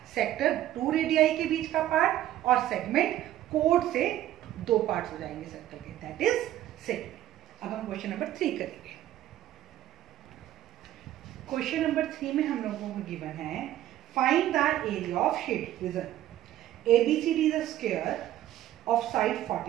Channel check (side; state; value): left; quieter; 13.2 dB